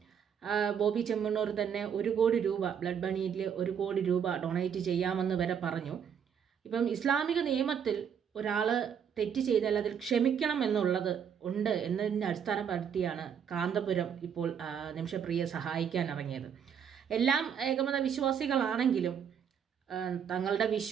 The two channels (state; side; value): quieter; left; 7.8 dB